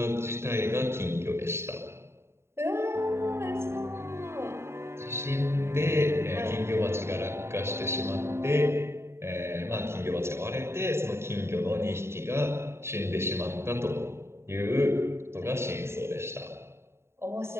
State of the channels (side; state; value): left; late; 0.12 ms